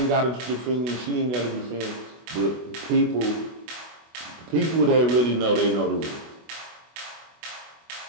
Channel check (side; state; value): left; late; 24 ms